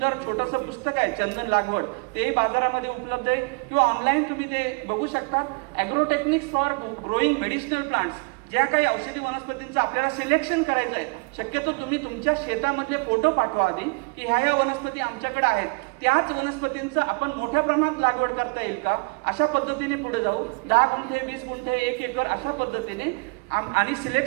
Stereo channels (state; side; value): quieter; left; 31.3 dB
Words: छोटंसं पुस्तक आहे चंदन लागवड, तेही बाजारामध्ये उपलब्ध आहे किंवा ऑनलाईन तुम्ही ते बघू शकता. ॲग्रोटेक्निक्स फॉर ग्रोईंग मेडिसिनल प्लांट्स, ज्या काही औषधी वनस्पतींचं आपल्याला सिलेक्शन करायचं आहे, शक्यतो तुम्ही तुमच्या शेतामधले फोटो पाठवा आधी की ह्या वनस्पती आमच्याकडे आहेत, त्याच वनस्पतींचं आपण मोठ्या प्रमाणात लागवड करता येईल का, अशा पद्धतीने पुढे जाऊ. 10 गुंठे, 20 गुंठे, 1 एकर अशा पद्धतीने आणि